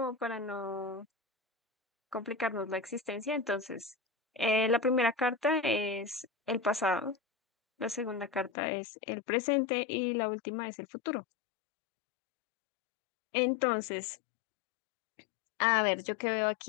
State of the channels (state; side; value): drops out; right; at 8.5 s